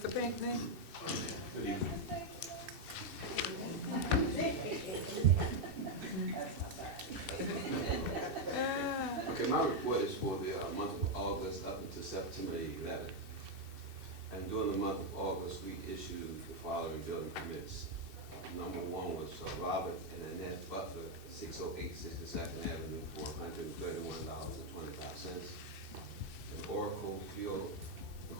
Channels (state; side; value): late; left; 2.6 ms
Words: Pinckney? Good evening. Okay, my report is for the month of August up until September 11th. And during the month of August, we issued the following building permits. Number one was Robert and Annette Butler, 608 62nd Avenue, for $131.25. And Oracle Fuel